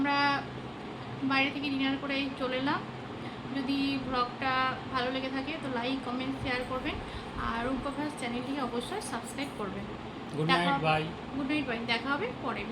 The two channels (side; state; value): both; identical; correlation 1.00